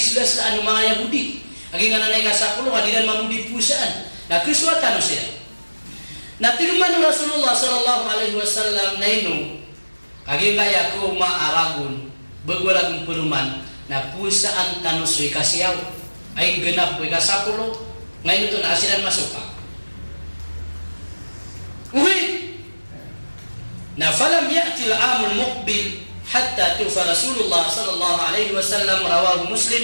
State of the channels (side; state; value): both; inverted; correlation -1.00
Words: la anu mga Yahudi. Agi nga nanay ka 10 adinan mamudi pusaan. Na kiswatan siya. Na tirman Rasulullah sallallahu alaihi wasallam na ino agi kaya ko maaragun bagwalagung peruman na pusaan tanus wi kasiyaw ay genap wi kasapulo ngayon ito na asilan masuk pa na falam ya'ti al-amul muqbil hatta tufa Rasulullah sallallahu alaihi wasallam rawahu Muslim